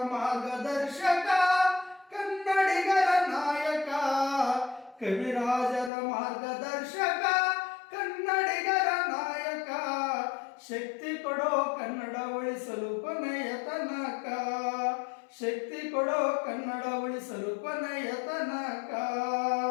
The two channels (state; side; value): drops out; right; at 5.9 s